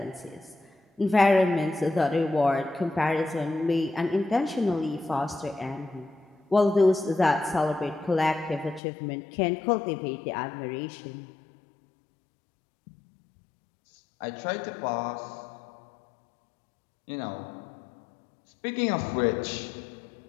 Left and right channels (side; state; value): right; drops out; at 8.8 s